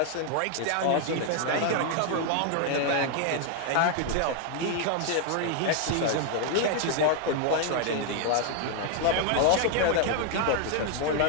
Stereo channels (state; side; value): different; both; correlation 0.00